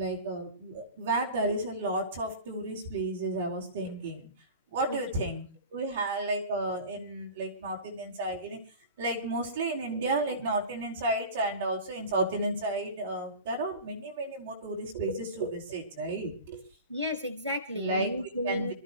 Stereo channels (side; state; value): both; inverted; correlation -0.35